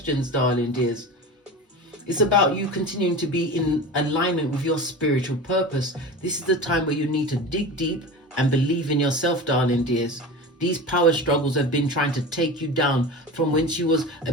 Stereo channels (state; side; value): normal; both; correlation 0.31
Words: darling dears. It's about you continuing to be in alignment with your spiritual purpose. This is the time where you need to dig deep and believe in yourself, darling dears. These power struggles have been trying to take you down from whence you was a